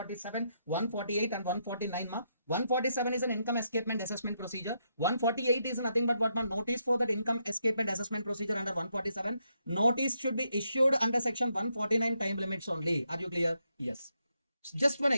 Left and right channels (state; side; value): inverted; both; correlation -0.79